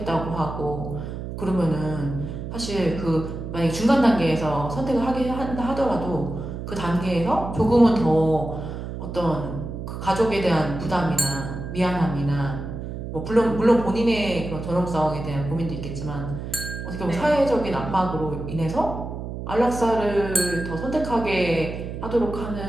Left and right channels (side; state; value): right; noise; hum, 7 dB below the sound